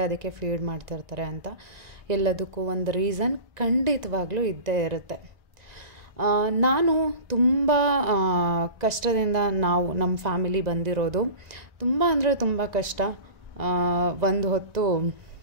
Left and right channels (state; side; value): late; left; 1.9 ms